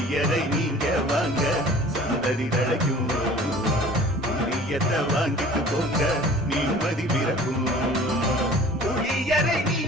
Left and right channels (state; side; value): normal; both; correlation 0.46